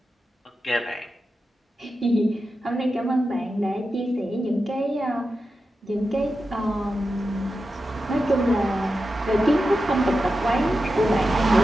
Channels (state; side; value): normal; both; correlation 0.91